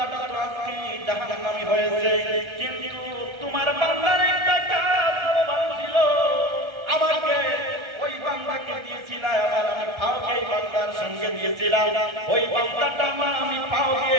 তো আজকে জাহান্নামী হয়েছে, কিন্তু তোমার বান্দার একটা কাজ ভালো ছিল, আমাকে ওই বান্দাকে দিয়েছিলাম, আবার আমি পাওকে এই বান্দার সঙ্গে দিয়েছিলাম, ওই বান্দাটা আমি পাও দিয়ে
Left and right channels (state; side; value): late; left; 1.3 ms